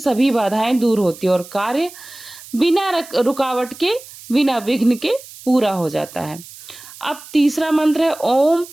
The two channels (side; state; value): right; noise; hiss, 18 dB below the sound